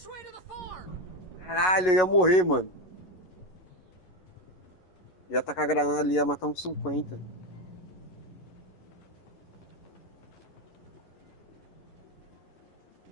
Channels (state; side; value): late; right; 11 ms